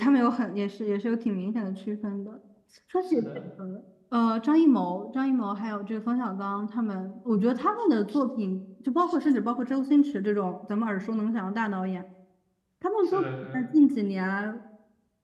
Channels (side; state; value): both; identical; correlation 1.00